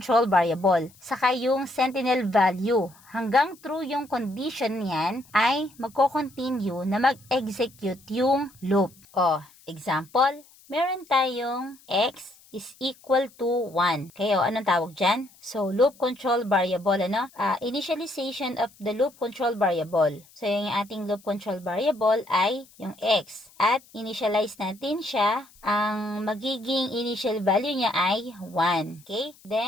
variable. Saka yung sentinel value. Hanggang true yung condition niyan, ay magko-continue na mag-execute yung loop. Example, meron tayong x is equal to 1. Okay, anong tawag dyan? So, loop control variable, initialization of the loop control variable. So, yung ating loop control variable ay yung x. At initialize natin siya. Ang magiging initial value niya ay 1. Okay?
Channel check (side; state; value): left; noise; hiss, 27 dB below the sound